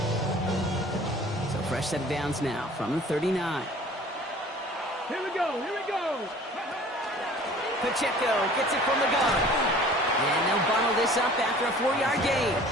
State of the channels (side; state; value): both; normal; correlation 0.48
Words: Fresh set of downs now from the 39. Here we go, here we go. Pacheco gets it from the gun. And they'll bundle this up after a 4-yard gain.